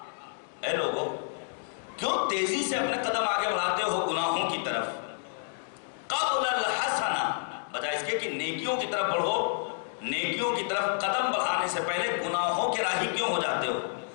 اے لوگو کیوں تیزی سے اپنے قدم آگے بڑھاتے ہو گناہوں کی طرف؟ قبل الحسنہ، بجائے اس کے کہ نیکیوں کی طرف بڑھو، نیکیوں کی طرف قدم بڑھانے سے پہلے گناہوں کے راہی کیوں ہو جاتے ہو؟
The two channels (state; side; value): silent; right; digital silence